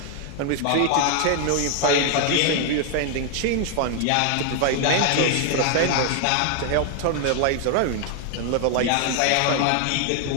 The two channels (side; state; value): both; different; correlation 0.00